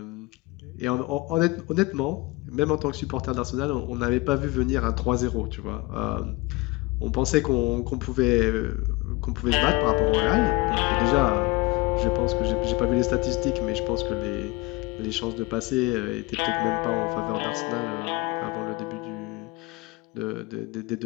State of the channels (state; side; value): quieter; right; 22.9 dB